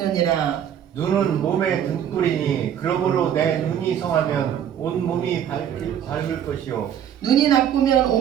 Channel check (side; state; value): left; quieter; 9.5 dB